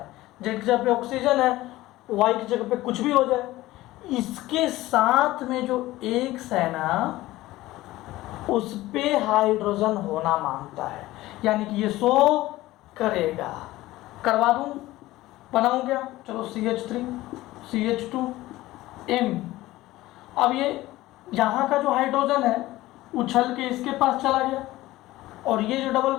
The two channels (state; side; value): quieter; right; 17.3 dB